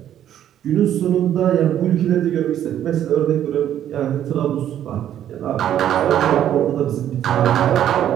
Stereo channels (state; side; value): quieter; left; 10.9 dB